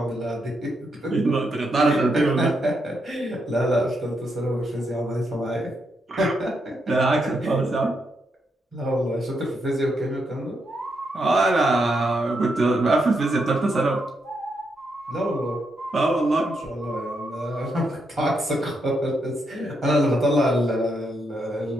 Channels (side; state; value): both; normal; correlation 0.81